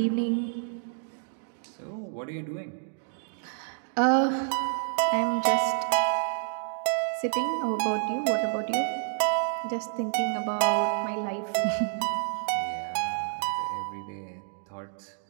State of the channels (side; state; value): left; silent; 59 dB below the other